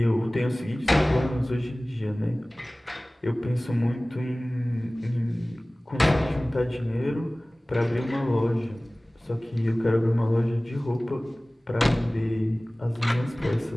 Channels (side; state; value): both; normal; correlation 0.98